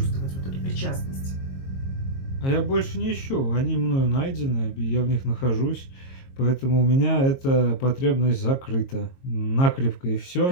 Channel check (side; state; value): right; late; 22 ms